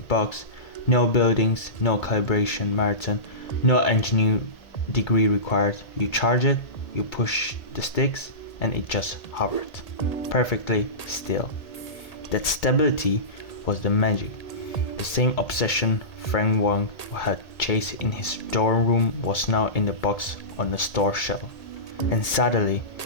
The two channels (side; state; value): right; late; 1.8 ms